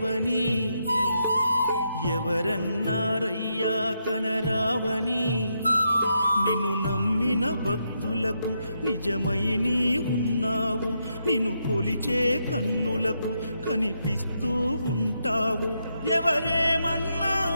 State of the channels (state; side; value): inverted; both; correlation -0.81